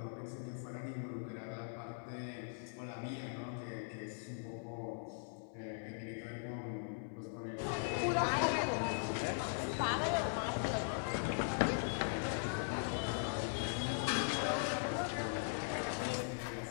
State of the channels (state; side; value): silent; right; digital silence